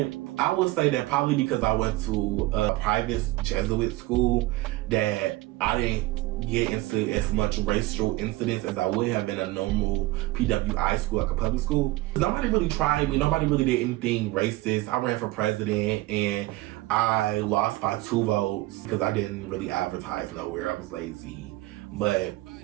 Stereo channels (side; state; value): left; quieter; 18.9 dB